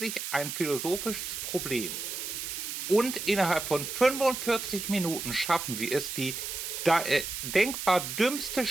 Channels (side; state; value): right; noise; hiss, 5 dB below the sound